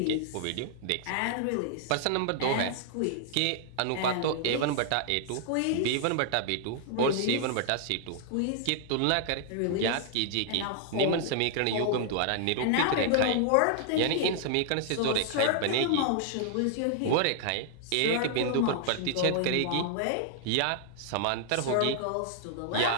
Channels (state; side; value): different; both; correlation -0.01